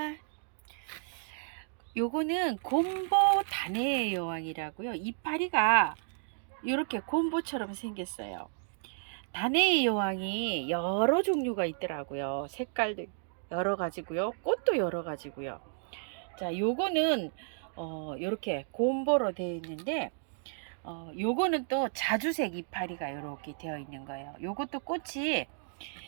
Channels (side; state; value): left; silent; digital silence